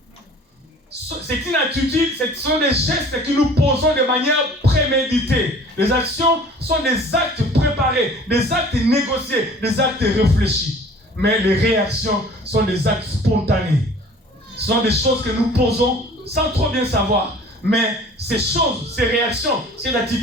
c'est une attitude, ce sont des gestes que nous posons de manière préméditée. Les actions sont des actes préparés, des actes négociés, des actes réfléchis. Mais les réactions sont des actes spontanés. Ce sont des choses que nous posons sans trop bien savoir. Mais ces choses, ces réactions, ces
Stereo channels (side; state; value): both; normal; correlation 0.48